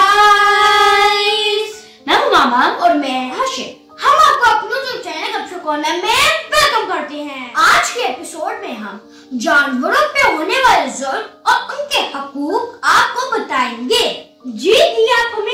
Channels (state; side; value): identical; both; correlation 1.00